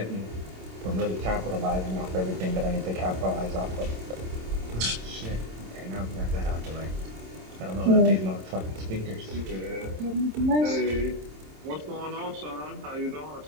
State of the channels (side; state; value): left; late; 27 ms